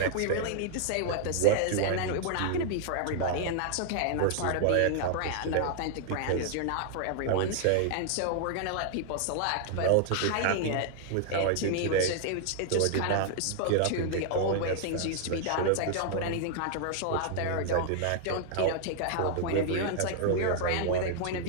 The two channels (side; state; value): both; different; correlation 0.00